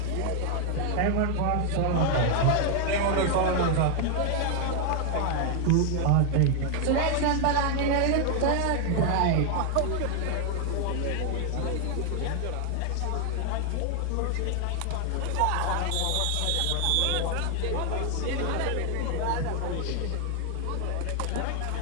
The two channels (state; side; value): different; both; correlation 0.00